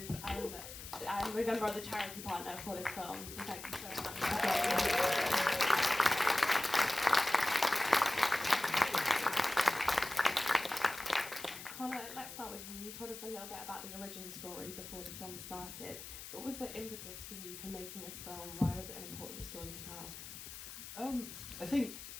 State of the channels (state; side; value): noise; left; hiss, 11 dB below the sound